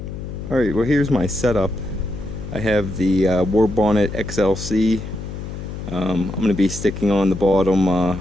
Alright, well here's my setup. I have the War Bonnet XLC. I'm going to be sticking on the bottom. I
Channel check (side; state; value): left; noise; hum, 8 dB below the sound